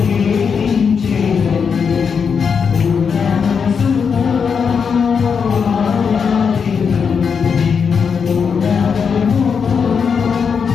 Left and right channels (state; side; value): quieter; right; 6.2 dB